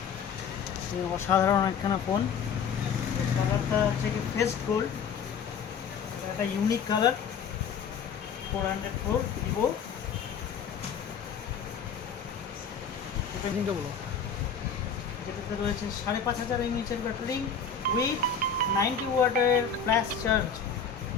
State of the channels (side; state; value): right; quieter; 6.4 dB